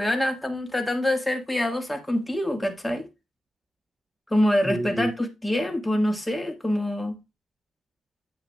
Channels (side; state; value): both; normal; correlation 0.94